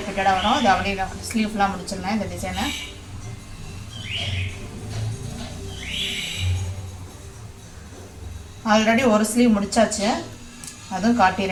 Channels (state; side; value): identical; both; correlation 1.00